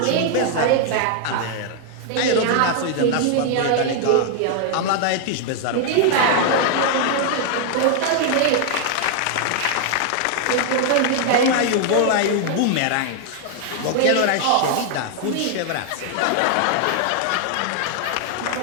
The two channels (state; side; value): different; both; correlation 0.00